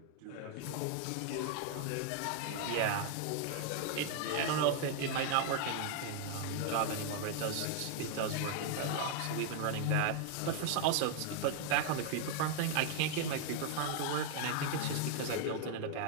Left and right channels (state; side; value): different; both; correlation 0.00